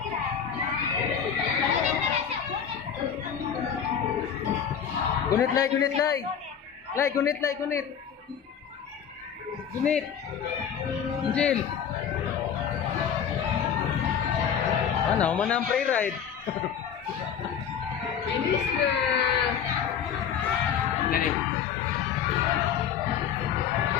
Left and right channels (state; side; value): quieter; right; 8.0 dB